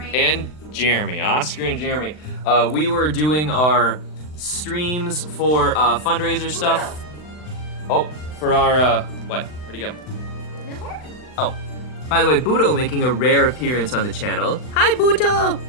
Jeremy. Oscar and Jeremy. We were doing our streams for fundraiser stuff. Oh, for our what? Where'd he go? Oh, by the way, Buto making a rare appearance on the channel. Hi, Buto.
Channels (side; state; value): right; late; 39 ms